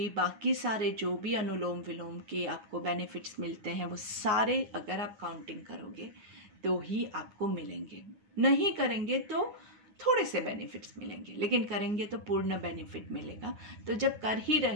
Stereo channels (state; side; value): late; left; 9.6 ms